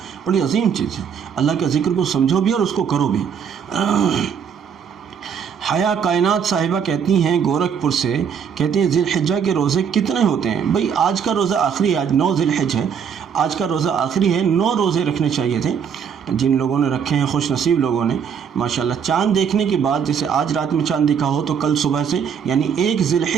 بڑی عظیم چیز ہے۔ اللہ کے ذکر کو سمجھو بھی اور اس کو کرو بھی۔ حیا کائنات صاحبہ کہتی ہیں گورکھپور سے، کہتی ہیں ذی الحجہ کے روزے کتنے ہوتے ہیں؟ بھئی آج کا روزہ آخری ہے، آج 9 ذی الحجہ ہے، آج کا روزہ آخری ہے، 9 روزے رکھنے چاہیے تھے۔ جن لوگوں نے رکھے ہیں خوش نصیب لوگوں نے ماشاءاللہ، چاند دیکھنے کے بعد جیسے آج رات میں چاند دکھا ہو تو کل صبح سے یعنی 1 ذی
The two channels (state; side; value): quieter; left; 7.3 dB